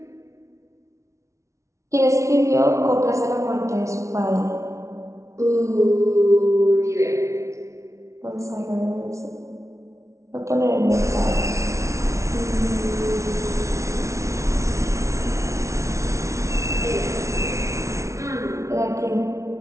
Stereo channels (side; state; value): left; late; 0.14 ms